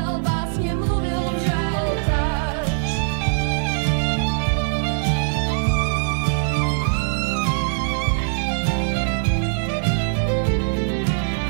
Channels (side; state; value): left; silent; 63 dB below the other